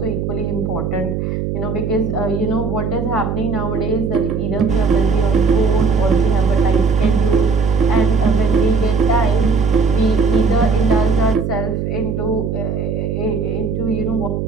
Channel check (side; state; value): right; noise; hum, 2 dB below the sound